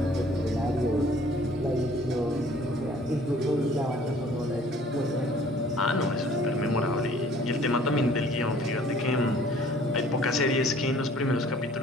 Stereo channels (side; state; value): both; normal; correlation 0.55